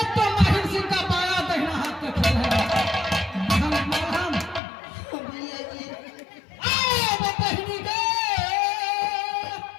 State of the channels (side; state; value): right; drops out; at 4.6 s